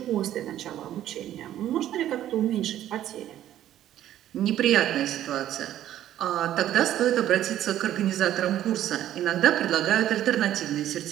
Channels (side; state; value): left; quieter; 12.2 dB